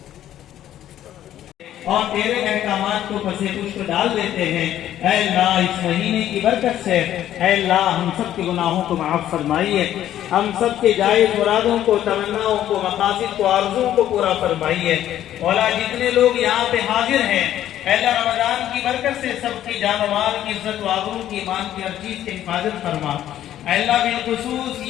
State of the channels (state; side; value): quieter; right; 11.9 dB